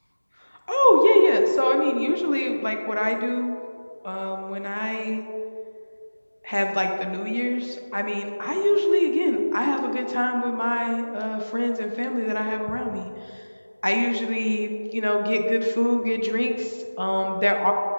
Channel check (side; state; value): both; inverted; correlation -1.00